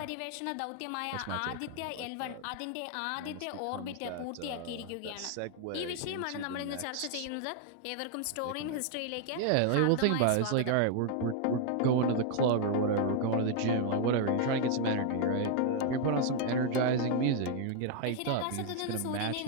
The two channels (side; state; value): both; different; correlation 0.00